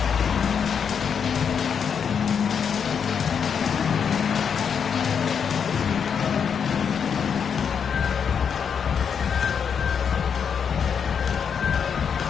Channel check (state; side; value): quieter; right; 7.1 dB